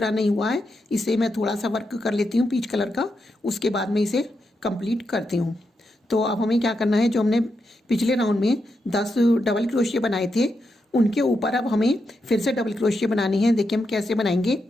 नहीं हुआ है, इसे मैं थोड़ा सा वर्क कर लेती हूँ पीच कलर का, उसके बाद में इसे कंप्लीट करती हूँ। तो अब हमें क्या करना है, जो हमने पिछले राउंड में 10 डबल क्रोशिया बनाए थे उनके ऊपर अब हमें फिर से डबल क्रोशिया बनानी है। देखिए हम कैसे बनाएंगे।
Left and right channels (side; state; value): both; normal; correlation 0.84